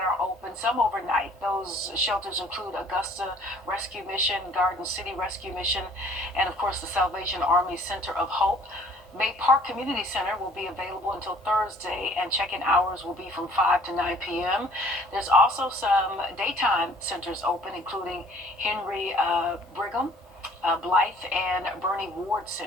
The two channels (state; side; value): normal; both; correlation 0.54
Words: are open, some overnight. Those shelters include Augusta Rescue Mission, Garden City Rescue Mission, and of course the Salvation Army Center of Hope. May Park Community Center will be available until Thursday, and check-in hours will be from 5 to 9 p.m. There's also some daytime centers open, including Henry Brigham, Blythe, and Bernie Ward